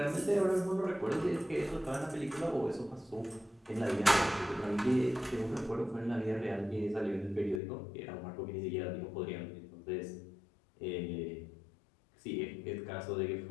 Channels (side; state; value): right; drops out; at 7.6 s